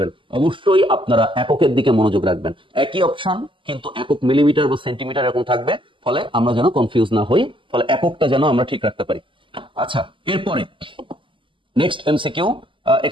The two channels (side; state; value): left; late; 0.25 ms